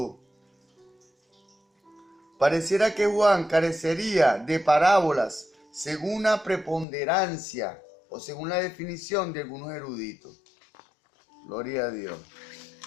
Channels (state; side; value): drops out; right; at 6.9 s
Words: Pareciera que Juan carecería de parábolas según una preponderancia o según la definición de algunos eruditos. Gloria a Dios.